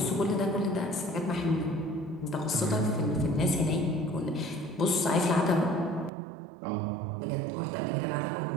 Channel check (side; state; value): left; drops out; at 6.1 s